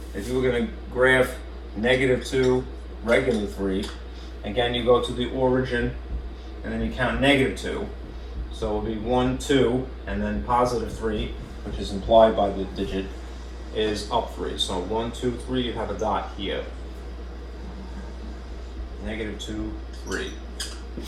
If you were going to graph -2, regular 3, again, you go to the origin, and then you count -2. So it'll be 1, 2, and then +3, which is implied by the digit, is up 3. So 1, 2, 3, you have a dot here. -2, 3.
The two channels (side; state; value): both; identical; correlation 1.00